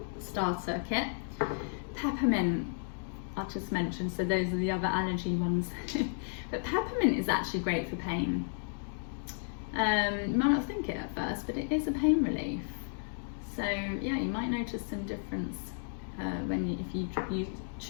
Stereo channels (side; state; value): right; silent; digital silence